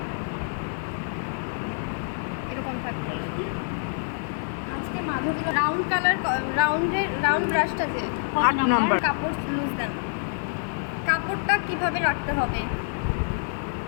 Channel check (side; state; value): right; silent; digital silence